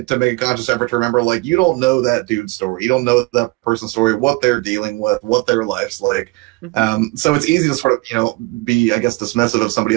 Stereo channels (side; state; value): left; quieter; 24.6 dB